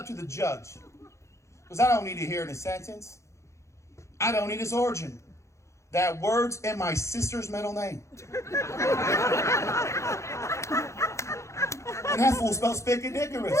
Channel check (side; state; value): right; late; 0.14 ms